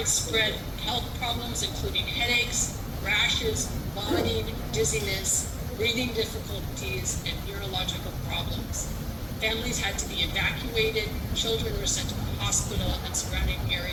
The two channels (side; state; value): both; identical; correlation 1.00